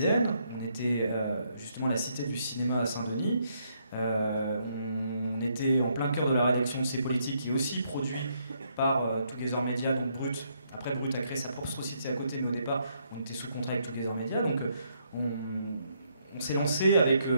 on était justement à la Cité du Cinéma à Saint-Denis, on était en plein cœur de la rédaction de C'est Politique, qui est aussi produit par Together Media, donc Brut. Après, Brut a créé sa propre société à côté, mais au départ, on était sous contrat avec Together Media, donc on s'est lancé avec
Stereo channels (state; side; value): inverted; both; correlation -0.74